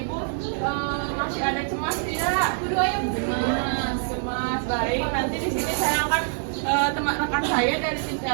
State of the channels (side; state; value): left; silent; 62 dB below the other